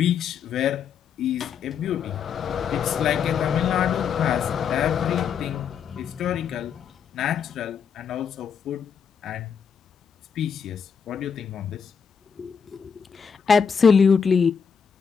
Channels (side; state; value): right; quieter; 6.8 dB